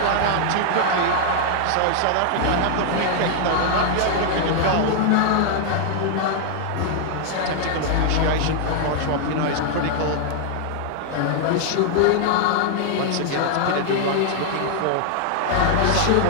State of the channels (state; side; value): different; both; correlation 0.00